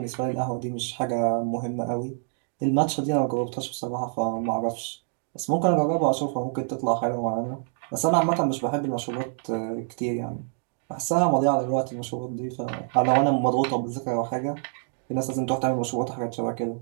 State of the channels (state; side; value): silent; left; 55 dB below the other